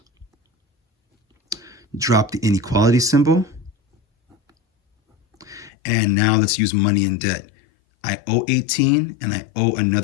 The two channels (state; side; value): drops out; right; at 5.7 s